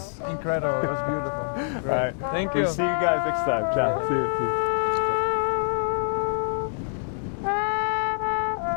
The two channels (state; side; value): silent; right; digital silence